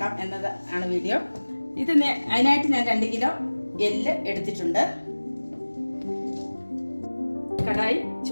എന്നത് ആണ് വീഡിയോ. അതിനായിട്ട് ഞാൻ 2 കിലോ എല്ല് എടുത്തിട്ടുണ്ട്. കടായി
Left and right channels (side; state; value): both; inverted; correlation -1.00